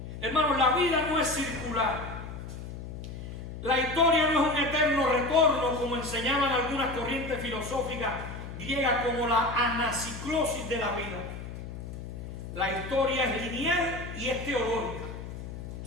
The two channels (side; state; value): left; noise; hum, 9 dB below the sound